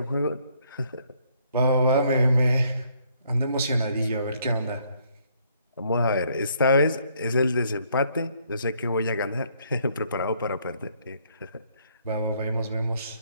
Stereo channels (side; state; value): both; inverted; correlation -0.67